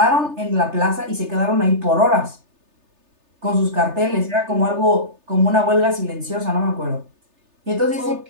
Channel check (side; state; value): left; late; 3.3 ms